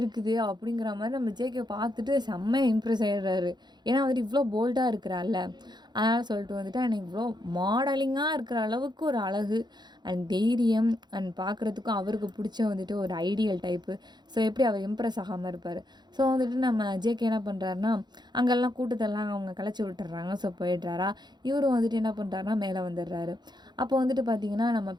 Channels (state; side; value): late; left; 0.21 ms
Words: அப்படிங்கிற மாரி நம்ம ஜேகே பார்த்துட்டு செம்ம இம்ப்ரெஸ் ஆயிடுறாரு. ஏன்னா வந்துட்டு இவ்ளோ போல்டா இருக்கிறாள்ல. அதனால சொல்லிட்டு வந்துட்டு எனக்கு இவ்ளோ மாடலிங்கா இருக்கிற அளவுக்கு ஒரு அழகு அண்ட் தைரியம் அண்ட் பார்க்குறதுக்கும் அவருக்கு பிடிச்ச வந்துட்டு ஒரு ஐடியல் டைப்பு. ஸோ எப்படி அவர் இம்ப்ரெஸ் ஆகாம இருப்பாரு. ஸோ வந்துட்டு நம்ம ஜேகே என்ன பண்ணுறாருன்னா, அங்கெல்லாம் கூட்டத்தெல்லாம் அவங்க கலைச்சி விட்டுர்றாங்க. ஸோ போயிடுறாரா. இவரும் வந்துட்டு என்ன பண்ணுறாருன்னா மேலே வந்துடுறாரு. அப்போ வந்துட்டு பார்த்தீங்கன்னா, நம்ம